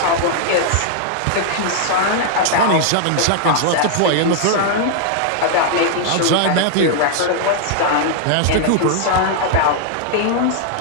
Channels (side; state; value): both; different; correlation -0.01